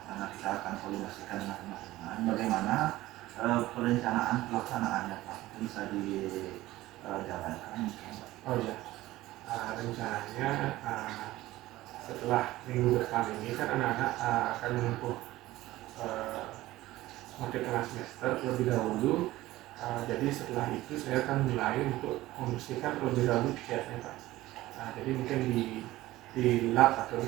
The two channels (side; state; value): left; quieter; 16.9 dB